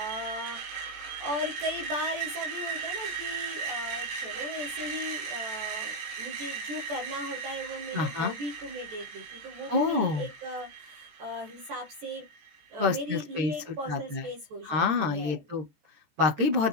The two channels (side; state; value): left; late; 14 ms